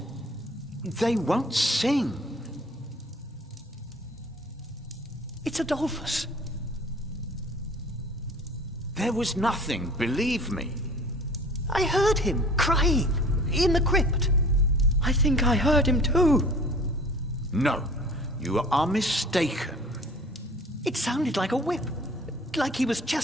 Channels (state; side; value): normal; both; correlation 0.47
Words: sing. It's Adolphus. There was nothing, believe me. I heard him crying in the crypt. I think I heard him too. No, you are mistaken. It sounded like a whip, like he was